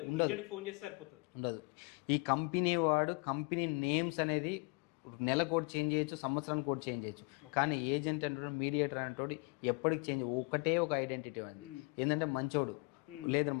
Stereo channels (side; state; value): right; quieter; 31.0 dB